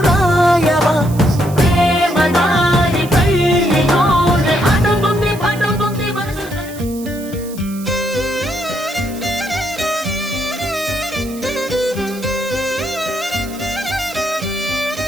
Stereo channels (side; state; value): right; noise; hiss, 17 dB below the sound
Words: రాయవా ప్రేమదారి పెళ్ళిలోనే అడుగుంది పడుగుంది మనసు